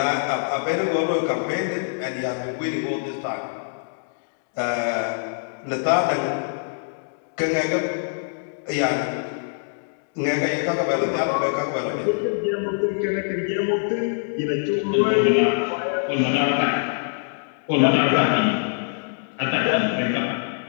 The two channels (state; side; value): silent; right; digital silence